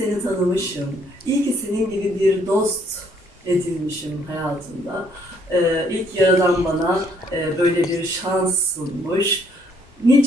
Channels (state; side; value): normal; both; correlation 0.66